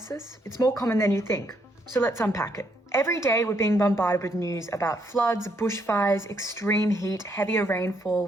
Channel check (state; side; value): normal; both; correlation 0.73